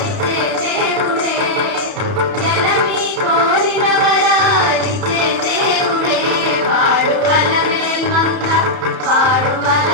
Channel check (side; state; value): left; late; 31 ms